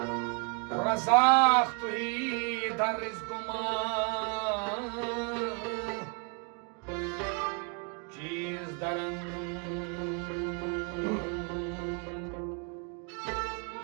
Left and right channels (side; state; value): left; quieter; 34.4 dB